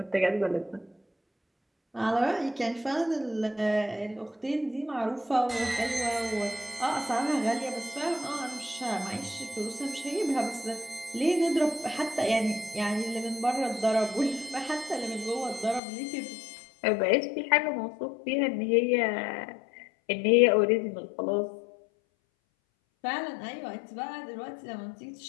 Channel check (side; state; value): right; drops out; at 15.8 s